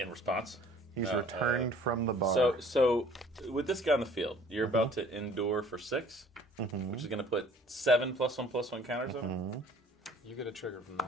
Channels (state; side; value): normal; both; correlation 0.53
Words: response. He's returned from the bar. So with this guy on the field, you're about to endure for 6, which is going to put 7 +1/+1 counters on him. You get a trigger from